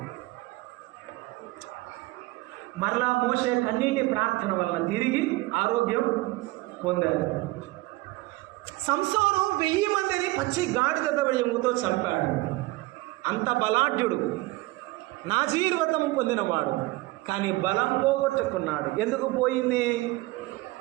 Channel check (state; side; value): quieter; left; 20.5 dB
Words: మరలా మోషే కన్నీటి ప్రార్థన వలన తిరిగి ఆరోగ్యం పొందారు. సంసోను 1000 మందిని పచ్చి గాడిద దవడెముతో చంపాడు. అంత బలాఢ్యుడు, నాజీర్వ్రతము పొందినవాడు. కానీ బలం పోగొట్టుకున్నాడు. ఎందుకు పోయింది?